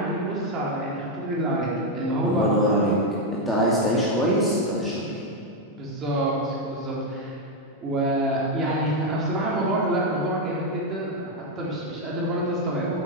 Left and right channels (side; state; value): both; normal; correlation 0.03